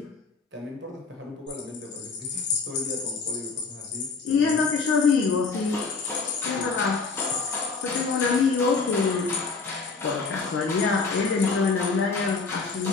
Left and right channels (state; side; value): quieter; right; 4.5 dB